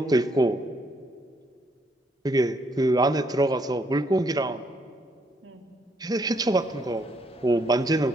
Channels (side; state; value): both; normal; correlation 0.71